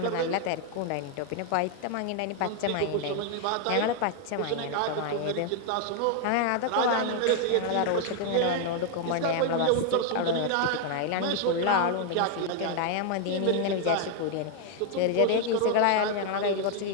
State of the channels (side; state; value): both; different; correlation 0.01